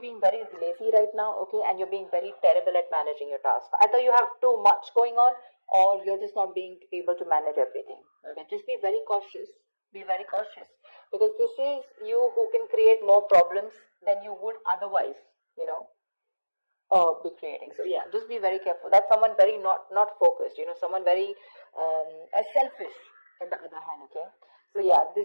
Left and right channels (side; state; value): both; inverted; correlation -1.00